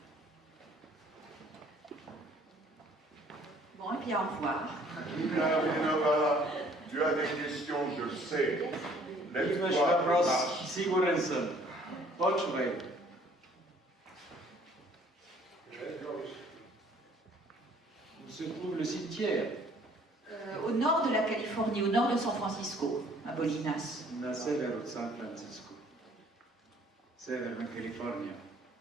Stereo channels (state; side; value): normal; both; correlation 0.58